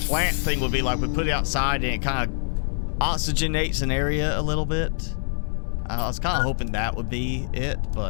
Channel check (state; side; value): silent; right; 60 dB below the other